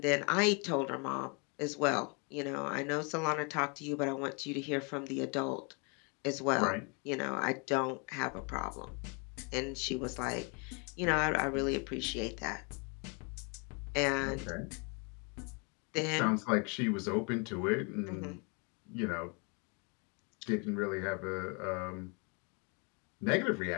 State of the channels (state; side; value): quieter; right; 34.2 dB